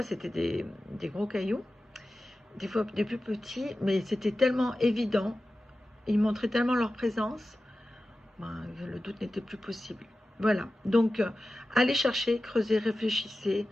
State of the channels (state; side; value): normal; both; correlation 0.94